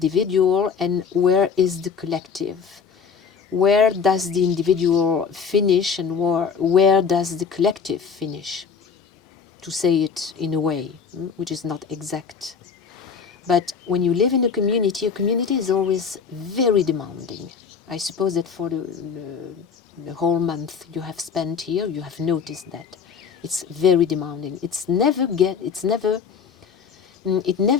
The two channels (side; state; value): right; quieter; 6.2 dB